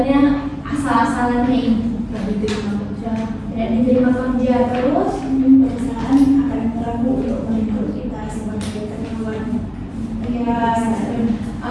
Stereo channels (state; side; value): identical; both; correlation 1.00